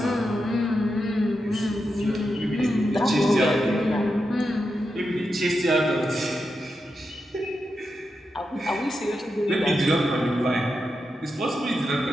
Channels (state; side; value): normal; both; correlation 0.87